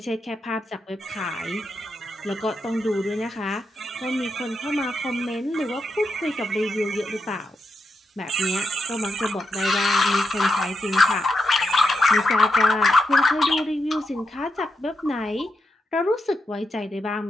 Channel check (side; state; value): both; normal; correlation 0.86